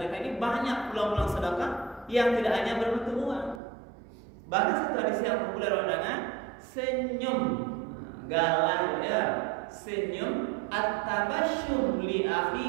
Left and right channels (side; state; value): left; drops out; at 3.6 s